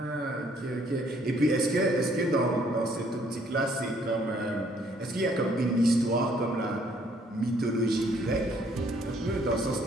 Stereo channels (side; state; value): both; normal; correlation 0.64